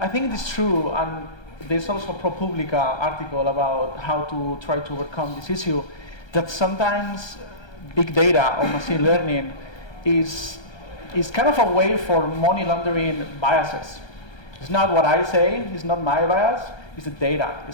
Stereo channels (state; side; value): late; right; 1.3 ms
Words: think it is true, and there's also a ProPublica article about how to try to overcome this issue, that sometimes big data or machine learning is kind of a way for money laundering biases. It's not what I say, it's not my bias, it's the data